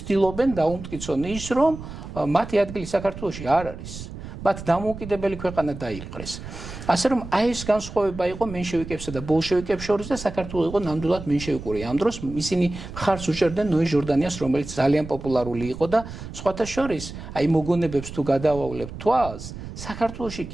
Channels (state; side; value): noise; right; rumble, 11 dB below the sound